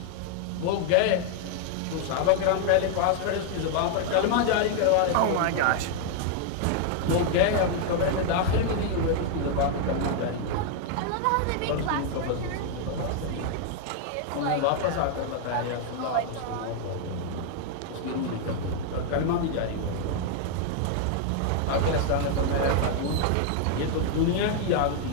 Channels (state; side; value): different; both; correlation 0.00